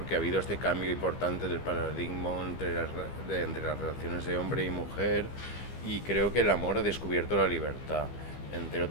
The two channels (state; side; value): late; right; 15 ms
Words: ha habido este cambio importante del paradigma entre las relaciones de hombre y mujer, y creo que el amor ha descubierto la libertad. Entre